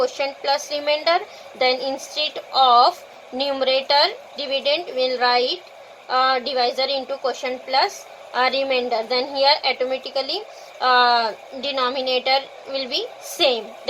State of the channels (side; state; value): both; identical; correlation 1.00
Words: plus remainder. Then instead of numerator dividend, we'll write divisor into quotient plus remainder. Then here automatically denominator will be same.